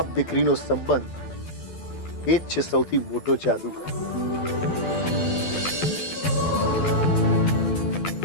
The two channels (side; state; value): right; late; 12 ms